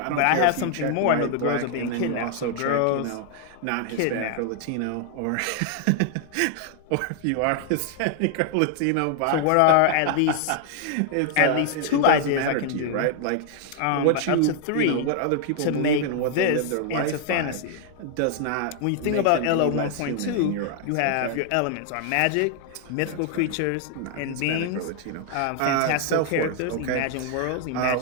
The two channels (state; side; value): different; both; correlation 0.00